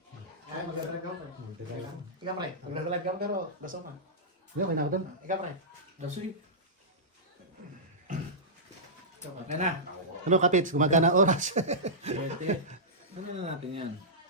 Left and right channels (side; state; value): both; normal; correlation -0.14